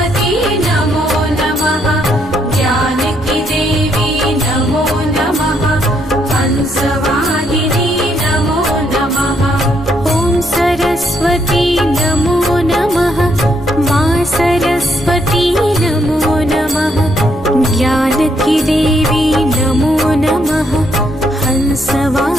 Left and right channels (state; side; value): normal; both; correlation 0.74